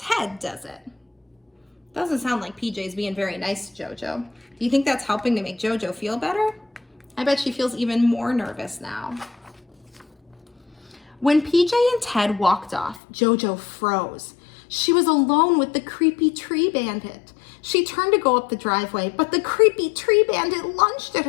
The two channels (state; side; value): drops out; right; at 13.0 s